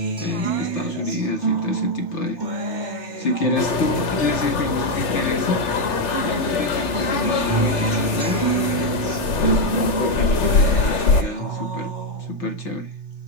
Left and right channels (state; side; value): late; right; 3.4 ms